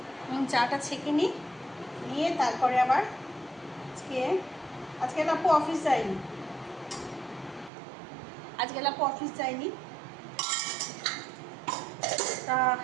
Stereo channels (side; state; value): left; drops out; at 7.7 s